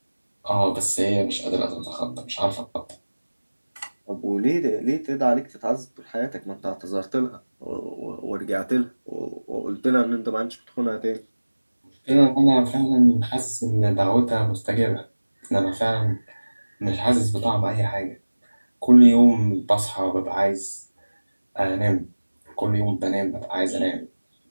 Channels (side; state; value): both; inverted; correlation -1.00